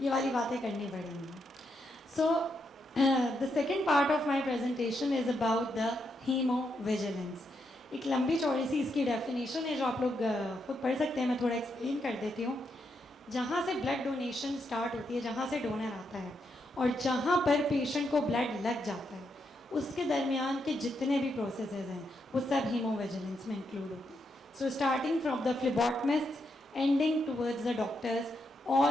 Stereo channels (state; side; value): normal; both; correlation 0.81